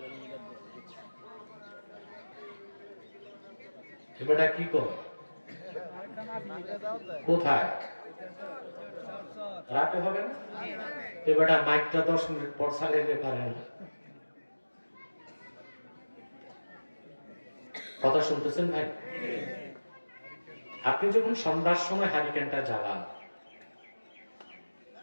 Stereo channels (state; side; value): inverted; both; correlation -1.00